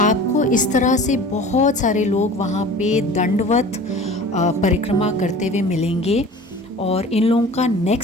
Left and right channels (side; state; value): both; normal; correlation 0.41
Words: आपको इस तरह से बहुत सारे लोग वहाँ पे दंडवत परिक्रमा करते हुए मिलेंगे और इन लोगों का